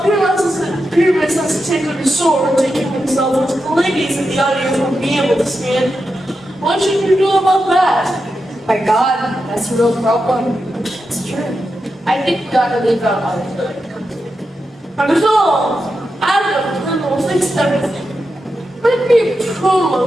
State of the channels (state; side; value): normal; both; correlation 0.88